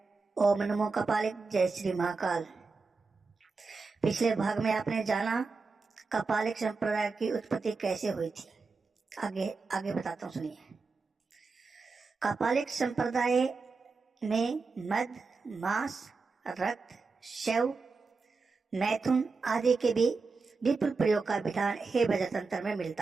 ओम नमो कपालिक। जय श्री महाकाल। पिछले भाग में आपने जाना कपालिक संप्रदाय की उत्पत्ति कैसे हुई थी। आगे आगे बताता हूँ, सुनिए। कपालिक संप्रदाय में मद, मांस, रक्त, शव, मैथुन आदि के भी विपुल प्रयोग का विधान हे वज्र तंत्र में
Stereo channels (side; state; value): left; quieter; 4.3 dB